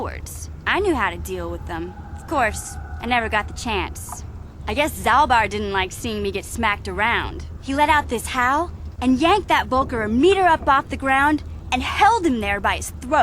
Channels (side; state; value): both; identical; correlation 1.00